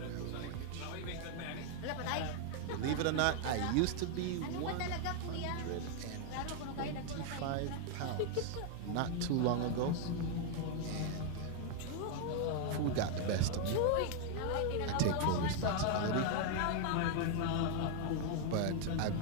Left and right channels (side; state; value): both; different; correlation 0.00